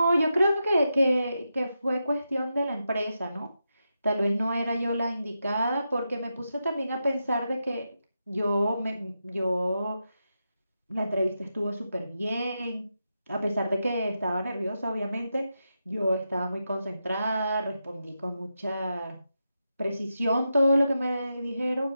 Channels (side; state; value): both; inverted; correlation -0.87